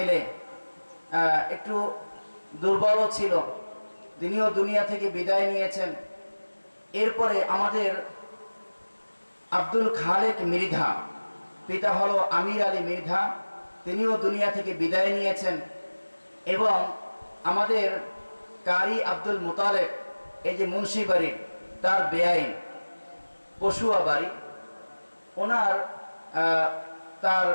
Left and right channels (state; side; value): inverted; both; correlation -1.00